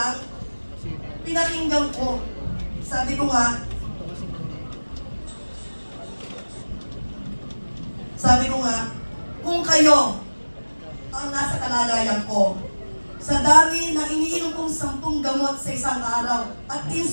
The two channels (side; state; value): both; inverted; correlation -1.00